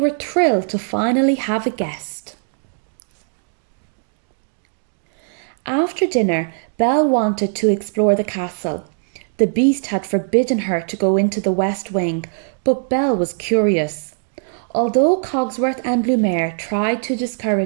thrilled to finally have a guest. After dinner, Belle wanted to explore the castle. The beast had forbidden her to go into the west wing, but Belle was curious. Although Cogsworth and Lumiere tried to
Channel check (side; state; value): left; silent; digital silence